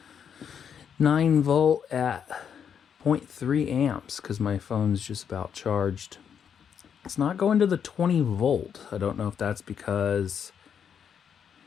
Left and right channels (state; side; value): quieter; right; 7.8 dB